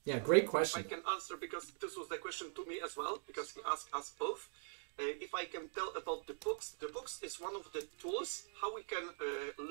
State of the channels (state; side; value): silent; left; digital silence